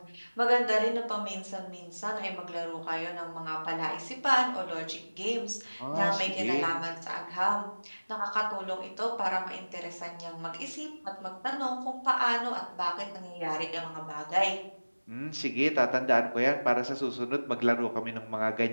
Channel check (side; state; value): both; inverted; correlation -1.00